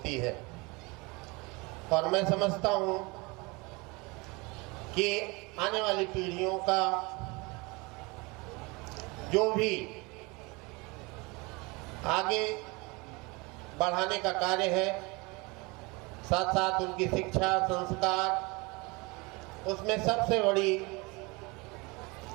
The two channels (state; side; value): quieter; left; 26.2 dB